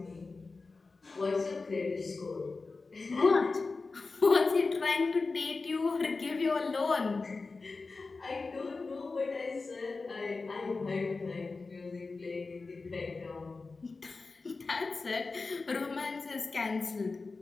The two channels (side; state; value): right; quieter; 4.0 dB